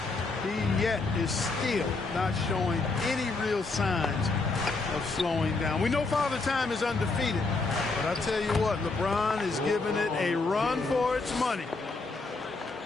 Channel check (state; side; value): quieter; right; 3.7 dB